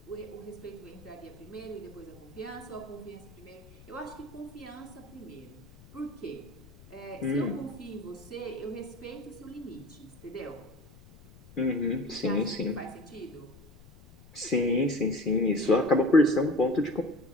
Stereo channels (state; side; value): noise; left; rumble, 22 dB below the sound